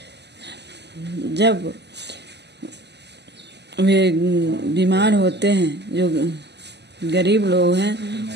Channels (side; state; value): left; late; 0.50 ms